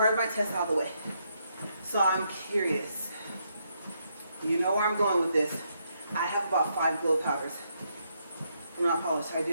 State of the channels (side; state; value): both; inverted; correlation -0.77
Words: of my test out of the way. So I'm curious. You know where I'm going with this. I have about 5 glow powders. I'm not polished, I